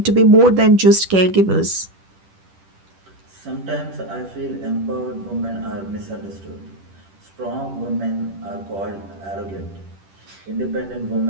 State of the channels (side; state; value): left; late; 10 ms